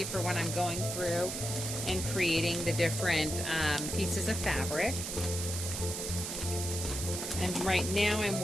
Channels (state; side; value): noise; right; hiss, 4 dB below the sound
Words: for when I'm going through and creating the different pieces of fabric. And right now I'm